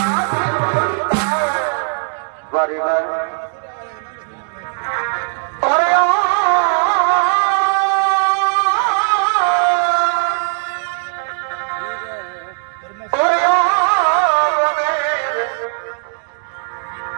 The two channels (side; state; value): left; silent; digital silence